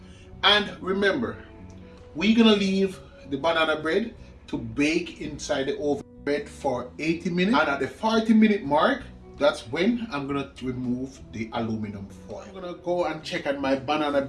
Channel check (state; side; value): identical; both; correlation 1.00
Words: And remember, we're gonna leave the banana bread to bake inside the oven bread for 80 minutes, and at the 40-minute mark, that's when I'm gonna remove the aluminum foil. I'm gonna go and check on my banana